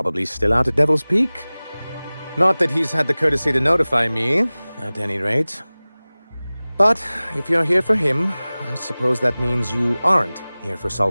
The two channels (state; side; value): inverted; both; correlation -0.99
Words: still out at Devil's Peak. Not that he's had the courtesy to notify me, at any rate. But if you're here for him, I suppose that means you aren't here for